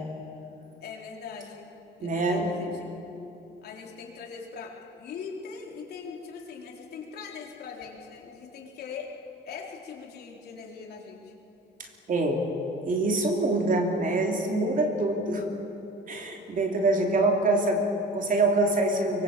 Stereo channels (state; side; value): normal; both; correlation 0.39